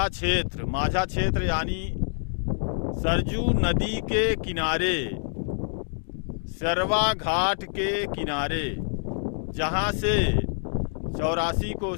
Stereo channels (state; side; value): silent; right; 61 dB below the other